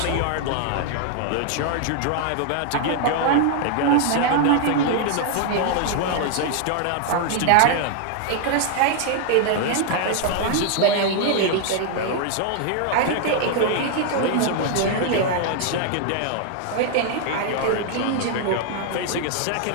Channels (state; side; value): different; both; correlation 0.00